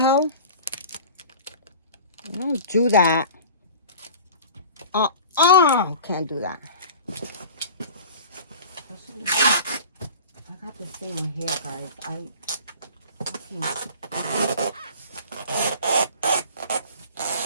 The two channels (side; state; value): both; inverted; correlation -0.42